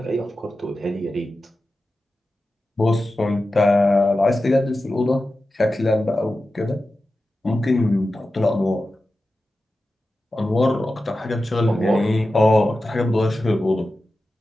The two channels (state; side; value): normal; both; correlation 0.93